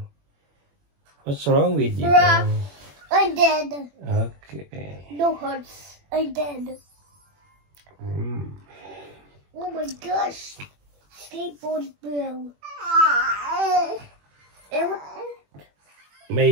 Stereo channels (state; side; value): late; left; 21 ms